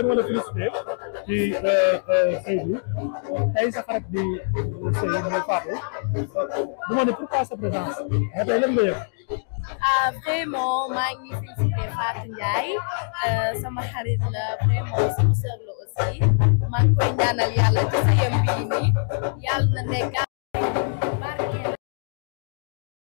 bi ma la félicité ci sëy bi tey sa xarit di sëy mooy Fatou du ma ne pourquoi sa présence mais tey lan nga yëg. Vraiment maa ngi félicité Fatou Ndiaye sama xarit la vraiment sama sœur la aussi maa ngi koy ñaanal yàlla ci sëyam bii nii yàlla na nekk barkeel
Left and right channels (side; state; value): right; silent; digital silence